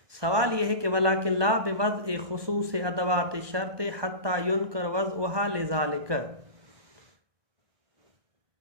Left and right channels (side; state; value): left; late; 1.2 ms